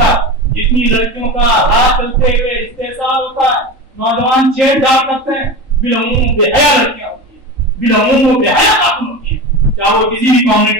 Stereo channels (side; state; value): left; late; 3.8 ms